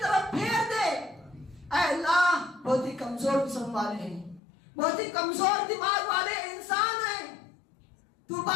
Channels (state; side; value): drops out; right; at 4.4 s